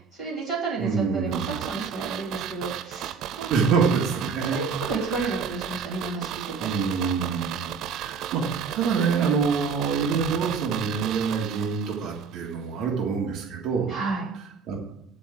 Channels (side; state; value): left; quieter; 5.5 dB